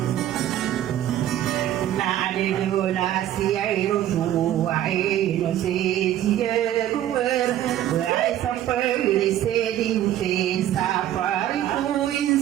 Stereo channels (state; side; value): quieter; left; 12.2 dB